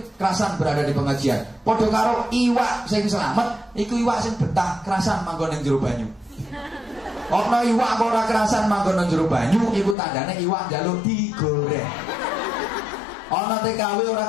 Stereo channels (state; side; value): drops out; right; at 10.0 s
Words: kerasan berada di pengajian. Padha karo iwak sing selamat, iku iwak sing betah kerasan manggon ning jero banyu. Ana iwak kok ora kerasan manggon ning jero banyu, iku tandane iwak njaluk digoreng. Ana TKW